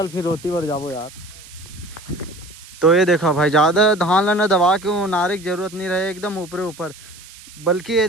फिर रोती बर जाबो यार। तो ये देखो भाई, ज़्यादा धान ला ना दबा के वो नारे की जरूरत नहीं रहे, एकदम ऊपरे ऊपर, बल्कि ये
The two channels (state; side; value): noise; right; hiss, 20 dB below the sound